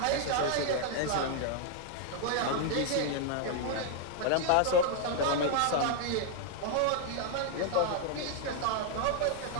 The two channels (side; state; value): both; different; correlation 0.00